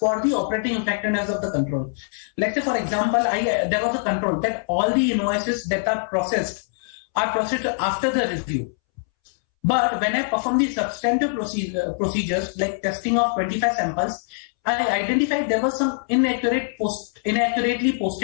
the operating effectiveness of the control. Let's say, for example, there was a control that all the invoices that are processed after the review. But when I perform the substantive procedures like testing of 25 samples, I identified there was some inaccurately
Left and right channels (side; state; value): right; silent; 63 dB below the other